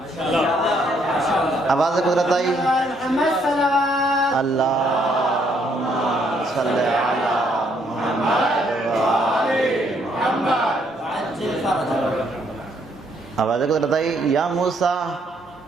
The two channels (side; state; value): both; normal; correlation 0.70